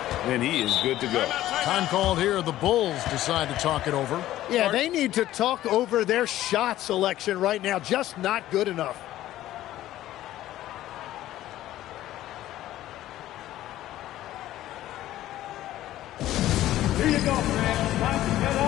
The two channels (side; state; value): right; quieter; 14.1 dB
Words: he is good to go. Time called here. The Bulls decide to talk it over. Yeah, they need to talk over their shot selection right now. Just not good enough. Here you go, man. Time to get